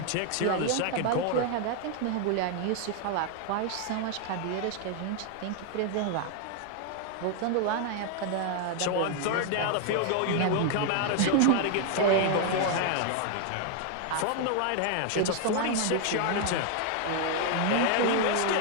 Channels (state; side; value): different; both; correlation 0.00